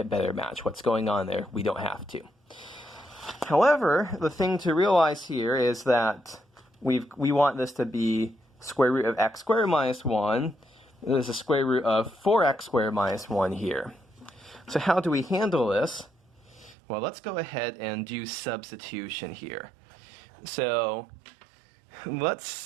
better match what's going on there. We don't have to. However, the thing to realize here is that we want this to be square root of x squared minus 1. There's a square root of 4x squared minus 1 here. So how do we handle this? Well, let's go ahead and do substitution here. So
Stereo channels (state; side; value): drops out; left; at 16.8 s